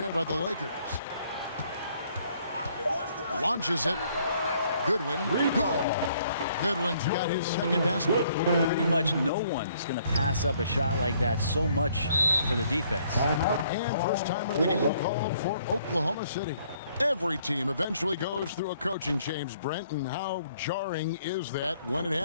by the Lakers. Launches it. Goodwin. Goodwin's got his second basket. Pretty much no one's going to pass up a shot like that so much for the defense. And first time of the game called for Oklahoma City. Every team eventually goes through a coaching change, Brent, and how jarring is that when it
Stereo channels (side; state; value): both; inverted; correlation -0.65